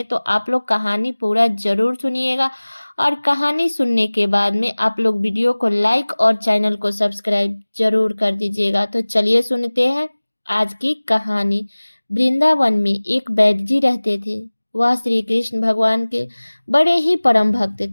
तो आप लोग कहानी पूरा जरूर सुनिएगा और कहानी सुनने के बाद में आप लोग वीडियो को लाइक और चैनल को सब्सक्राइब जरूर कर दीजिएगा। तो चलिए सुनते हैं आज की कहानी। वृंदावन में एक वैद्य जी रहते थे। वह श्री कृष्ण भगवान के बड़े ही परम भक्त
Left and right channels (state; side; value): inverted; both; correlation -1.00